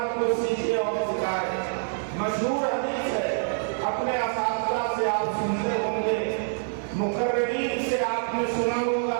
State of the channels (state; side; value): silent; left; 61 dB below the other